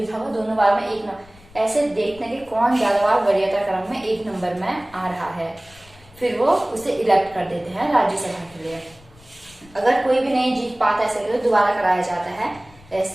था वो दोनों बार में 1 नंबर। ऐसे देखते हैं कि कौन ज्यादा बार वरीयता क्रम में 1 नंबर में आ रहा है, फिर वो उसे इलेक्ट कर देते हैं राज्यसभा के लिए। अगर कोई भी नहीं जीत पाता ऐसे तो दोबारा कराया जाता है।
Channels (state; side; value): noise; left; rumble, 25 dB below the sound